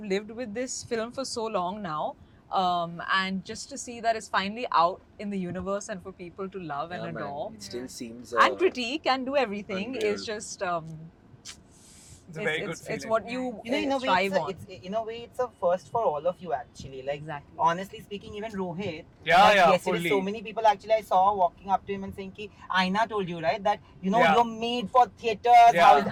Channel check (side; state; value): both; identical; correlation 1.00